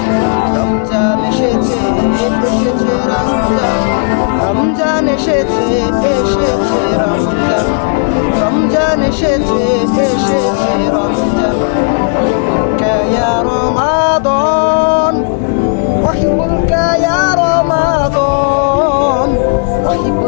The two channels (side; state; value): right; silent; digital silence